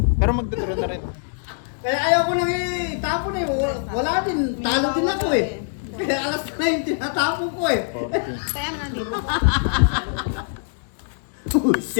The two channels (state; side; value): silent; right; digital silence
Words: Pero magdadraw na rin. Kaya ayaw ko nang itapon eh. Wala din. Talo din ako eh. Kaya alas na yung tinatapon ko eh. Kaya nga, di ba? Oh,